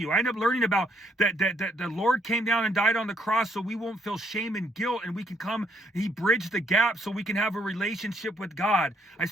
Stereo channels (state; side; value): normal; both; correlation 0.70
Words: I end up learning about that the Lord came down and died on the cross so we won't feel shame and guilt, and we can come, he bridged the gap so we can have a relationship with God. I